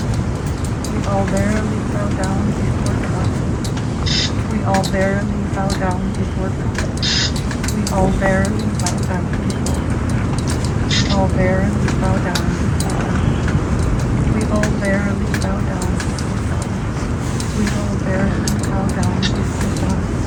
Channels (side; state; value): both; identical; correlation 1.00